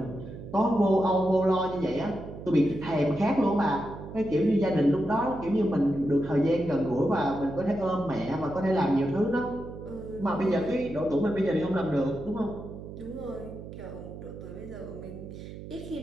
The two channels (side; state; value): right; noise; hum, 12 dB below the sound